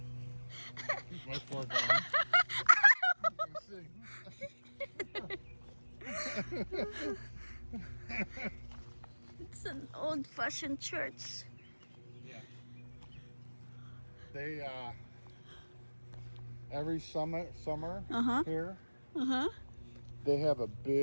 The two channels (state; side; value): inverted; both; correlation -1.00